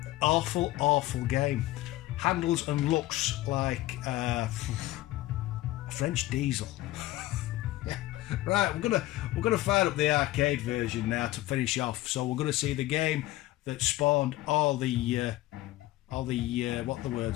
Awful, awful game. Handles and looks like French diesel. Yeah. Right, we're gonna fire up the arcade version now to finish off. So we're gonna see the game that spawned all the what are the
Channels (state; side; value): quieter; right; 17.1 dB